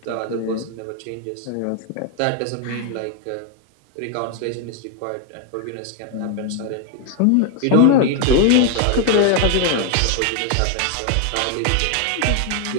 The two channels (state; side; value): different; both; correlation 0.00